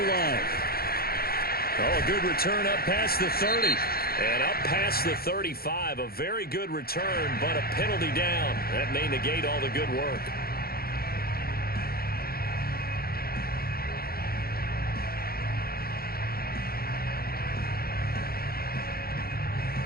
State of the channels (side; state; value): right; late; 0.44 ms